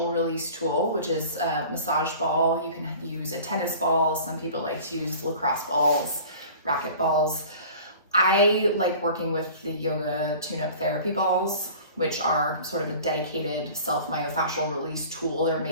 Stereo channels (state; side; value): inverted; both; correlation -0.43